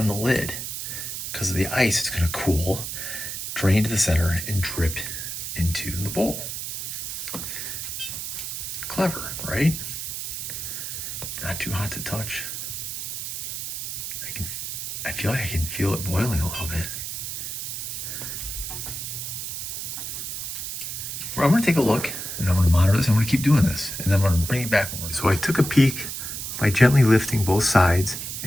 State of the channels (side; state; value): right; noise; hiss, 5 dB below the sound